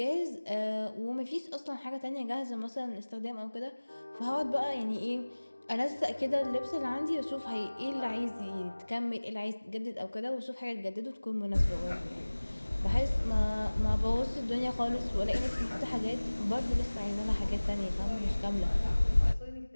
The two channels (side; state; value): both; inverted; correlation -1.00